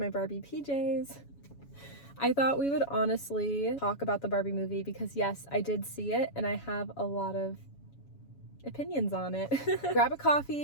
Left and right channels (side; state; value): right; late; 7.1 ms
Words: Barbie PJs. I thought we would honestly talk about the Barbie movie because yes, I did see it and I have a lot of opinions on it. Grab a